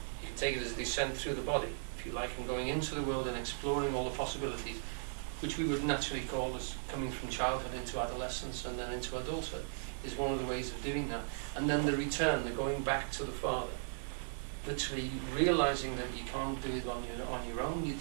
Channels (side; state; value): left; silent; digital silence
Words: can take it as a descent through the body, if you like, and going into the world and exploring all the possibilities, which we would naturally call as coming from childhood into adolescence and then into adulthood, is one of the ways of doing that. And then the return, the going back to the Father, literally realizing that you can't do it on your own,